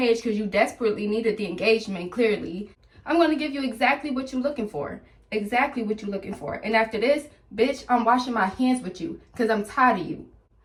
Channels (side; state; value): both; identical; correlation 1.00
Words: because you desperately needed the engagement, clearly. I'm going to give you exactly what you're looking for. Exactly what you're looking for. And after this, bitch, I'm washing my hands with you because I'm tired of you.